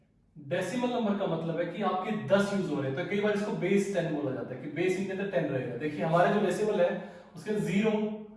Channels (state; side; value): identical; both; correlation 1.00